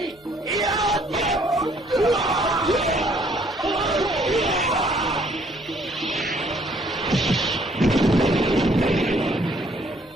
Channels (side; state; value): both; normal; correlation 0.63